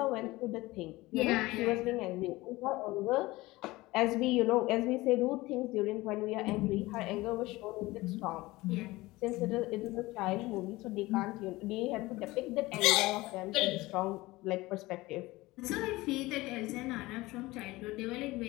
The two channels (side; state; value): right; quieter; 20.0 dB